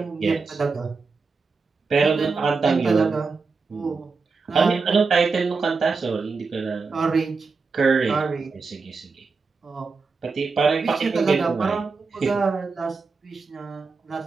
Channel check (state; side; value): quieter; left; 4.5 dB